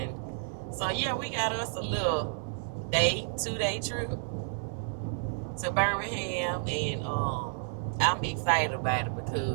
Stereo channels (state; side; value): silent; left; digital silence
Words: so yeah, we got us a little 2-day trip to Birmingham, and I'm excited about it